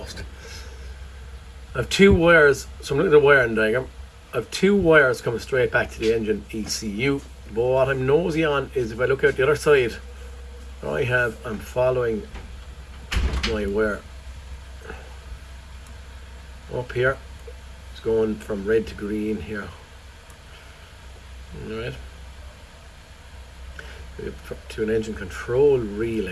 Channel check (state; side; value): identical; both; correlation 1.00